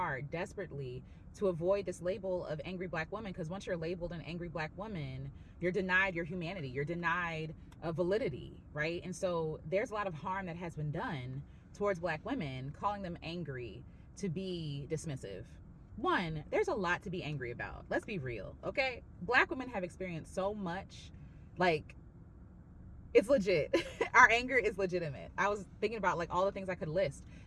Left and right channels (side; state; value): both; identical; correlation 1.00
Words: desperately, to avoid this label of angry black woman. Because once you're labeled an angry black woman, you're denied your humanity, you're denied validity, right? And so there's a lot of harm that has been done towards black women, calling them angry to be dismissive. One, there's a lot to be angry about. Let's be real, okay? Black women have experienced so much, like, it's legit. Our anger is legitimate. I was thinking about like all the things I could list.